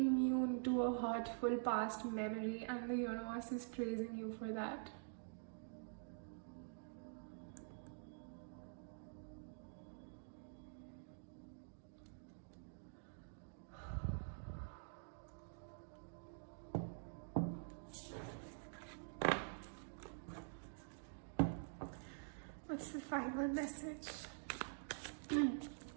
to a hurtful past memory, and the universe is praising you for that. What's the final message?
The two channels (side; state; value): left; silent; digital silence